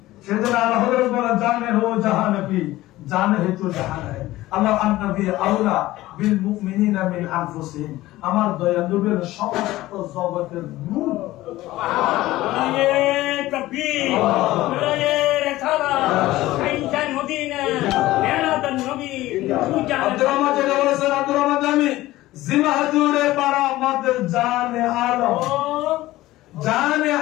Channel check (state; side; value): quieter; right; 16.9 dB